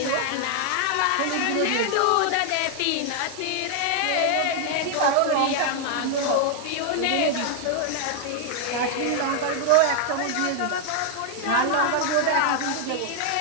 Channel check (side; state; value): both; different; correlation 0.00